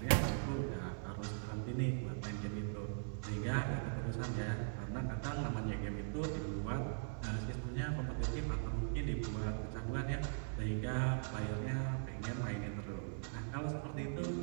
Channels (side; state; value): left; silent; digital silence